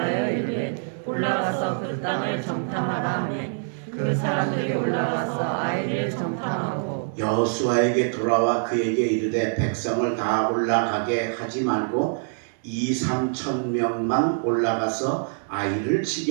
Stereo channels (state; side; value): silent; left; digital silence